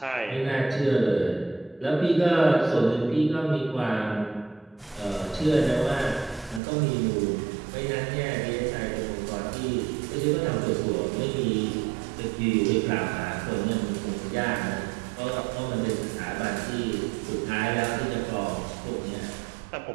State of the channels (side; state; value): left; drops out; at 6.6 s